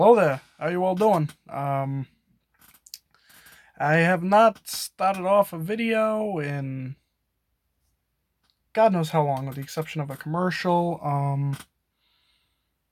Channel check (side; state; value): both; identical; correlation 1.00